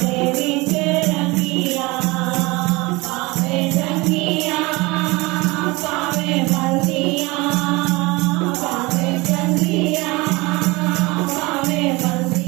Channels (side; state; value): left; quieter; 23.4 dB